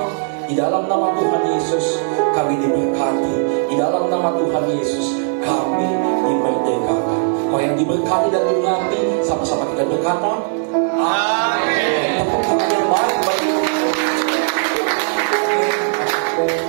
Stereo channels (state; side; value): silent; left; digital silence